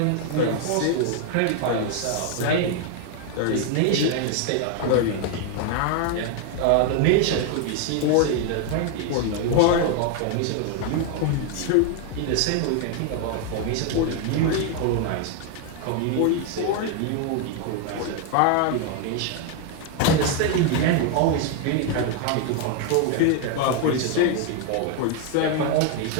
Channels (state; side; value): different; both; correlation 0.01